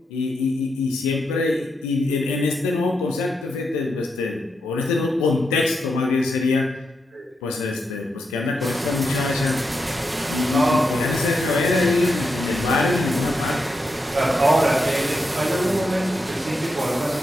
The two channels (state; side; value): normal; both; correlation 0.84